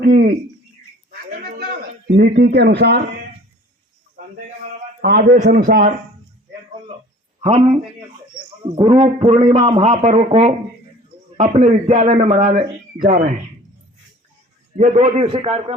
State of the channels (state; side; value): normal; both; correlation 0.48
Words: नीति के अनुसार, आदेश अनुसार हम गुरु पूर्णिमा महापर्व को अपने विद्यालय में मनाने जा रहे हैं। ये 2 दिवसीय